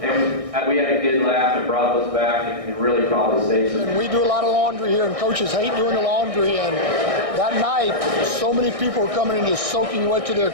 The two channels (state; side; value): late; left; 1.6 ms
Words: we had a good laugh and brought those back and really probably saved some. We do a lot of laundry here, and coaches hate doing the laundry. And that night, so many people were coming in just soaking wet to their